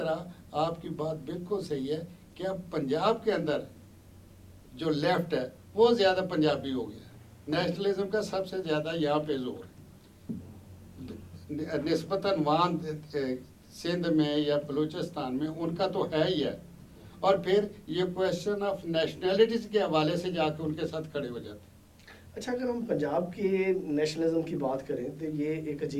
آپ کی بات بالکل صحیح ہے کہ اب پنجاب کے اندر جو لیفٹ ہے وہ زیادہ پنجابی ہو گیا، نیشنلزم کا سب سے زیادہ یہاں پہ زور نسبتاً وہاں سندھ میں یا بلوچستان میں ان کا تو ہے ہی ہے، اور پھر یہ کویشچن آف نیشنلٹیز کے حوالے سے جا کے ان کے ساتھ کھڑے ہو جاتے ہیں۔ اچھا، اگر ہم پنجاب کے نیشنلزم کی بات کریں تو یہ ایک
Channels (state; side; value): identical; both; correlation 1.00